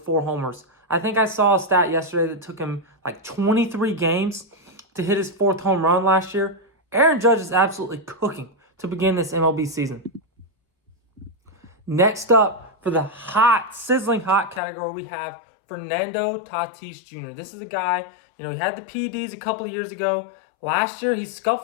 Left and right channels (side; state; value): right; drops out; at 14.6 s